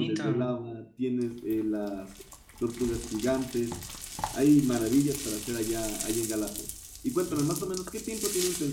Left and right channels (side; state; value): both; identical; correlation 1.00